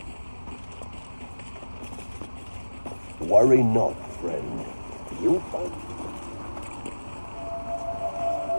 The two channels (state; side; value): inverted; both; correlation -1.00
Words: Worry not, friend. You'll find...